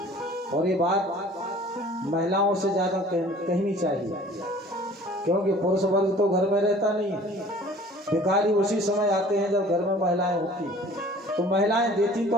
और ये बात महिलाओं से ज्यादा कहनी चाहिए, क्योंकि पुरुष वर्ग तो घर में रहता नहीं है। भिखारी उसी समय आते हैं जब घर में महिलाएं होती। तो महिलाएं देती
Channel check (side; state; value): both; normal; correlation 0.49